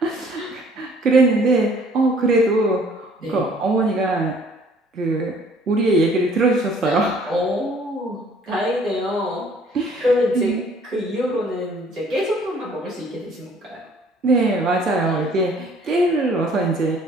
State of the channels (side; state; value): both; normal; correlation 0.57